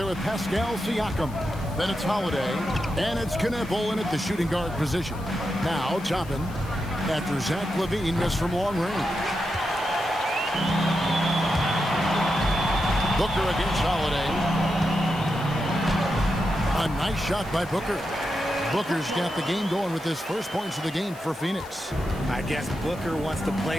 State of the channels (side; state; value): left; noise; hiss, 22 dB below the sound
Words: with Pascal Siakam. Then it's Holiday. And it's Kenneth Olin at the shooting guard position. Now topping after Zach LaVine missed from long range. Booker against Holiday. A nice shot by Booker. Booker's got the game going with his first points of the game for Phoenix. I guess Booker wants to play